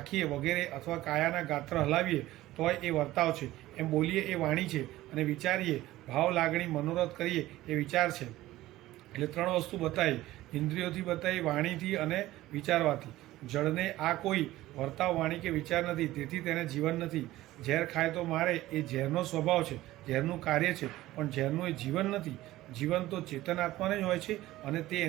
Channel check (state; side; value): quieter; left; 16.3 dB